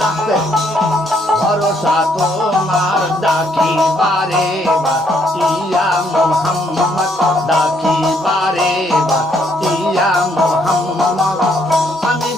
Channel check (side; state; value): both; normal; correlation 0.70